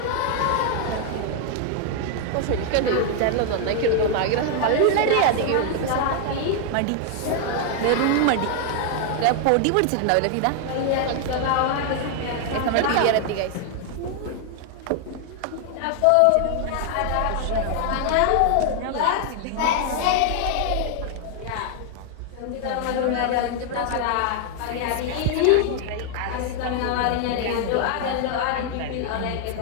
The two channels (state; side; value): different; both; correlation 0.00